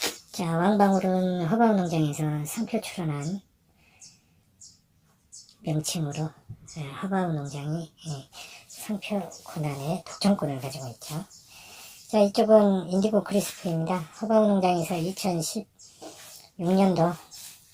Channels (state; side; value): identical; both; correlation 1.00